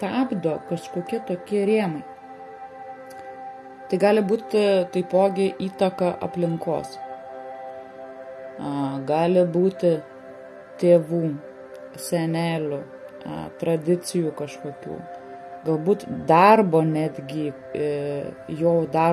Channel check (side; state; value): both; identical; correlation 1.00